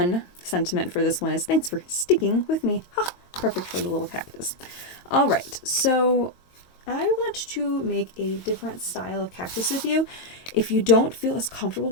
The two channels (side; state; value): right; late; 22 ms